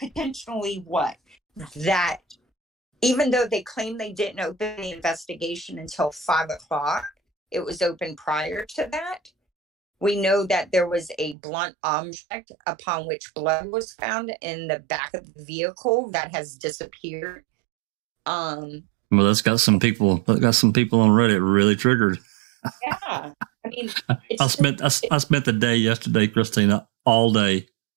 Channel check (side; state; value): left; drops out; at 11.4 s